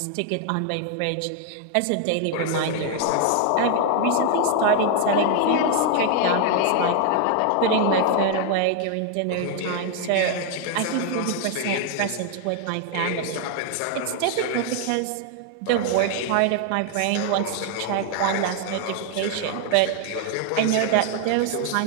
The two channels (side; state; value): both; different; correlation 0.00